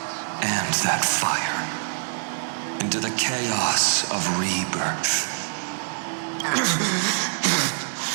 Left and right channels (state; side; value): silent; left; digital silence